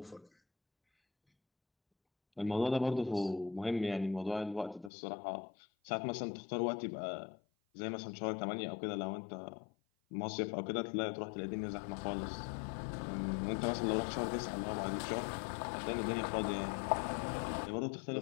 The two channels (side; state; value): right; drops out; at 4.9 s